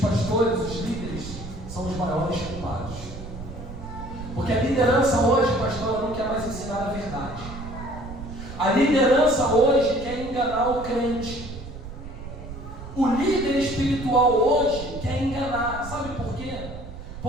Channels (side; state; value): right; noise; rumble, 11 dB below the sound